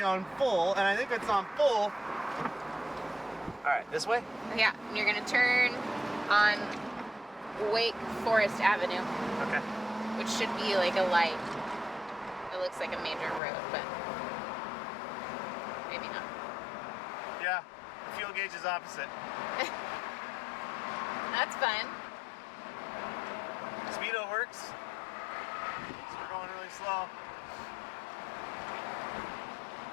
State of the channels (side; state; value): right; drops out; at 13.4 s